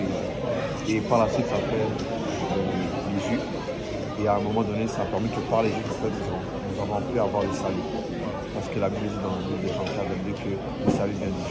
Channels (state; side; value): identical; both; correlation 1.00